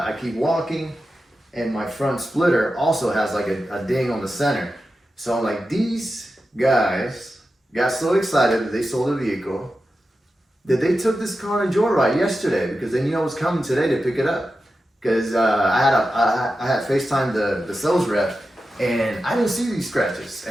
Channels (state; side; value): normal; both; correlation 0.91